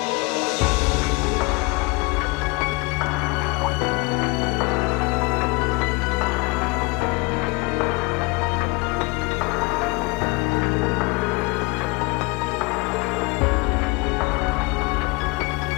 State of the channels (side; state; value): right; quieter; 26.1 dB